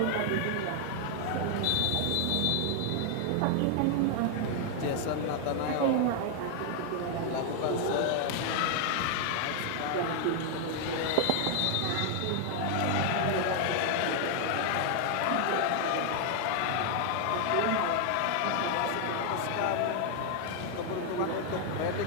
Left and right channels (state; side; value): different; both; correlation 0.00